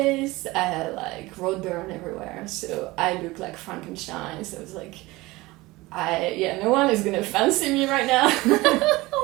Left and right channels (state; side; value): quieter; left; 20.7 dB